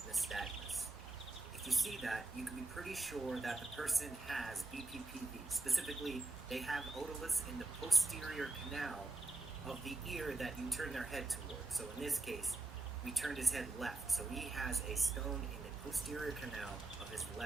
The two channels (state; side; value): quieter; left; 3.1 dB